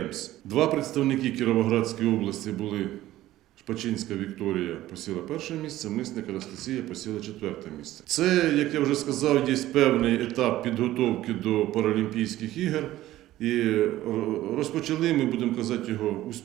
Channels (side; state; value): left; quieter; 15.0 dB